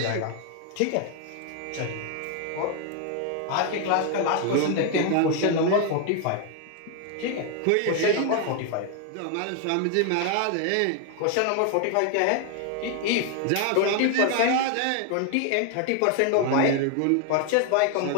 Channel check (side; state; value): both; different; correlation 0.01